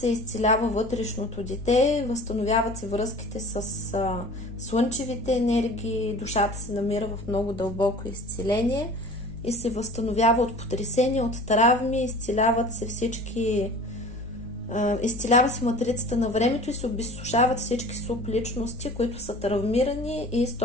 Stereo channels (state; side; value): normal; both; correlation 0.42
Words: изцелява вътрешното дете, възстановяват се връзките с слънчевите енергии, душата се намира в много дълбоко изцеление и се възстановява от потресения, от травми, изцеляват се изцелява се матрицата на времето и се обезсушават всички субличности, които са травмирани и